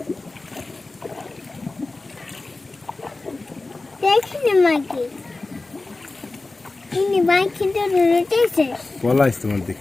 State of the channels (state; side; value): quieter; right; 3.3 dB